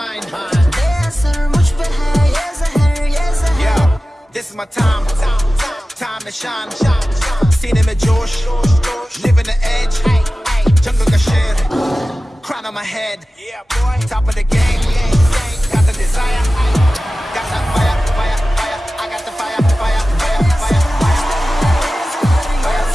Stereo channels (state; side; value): normal; both; correlation 0.95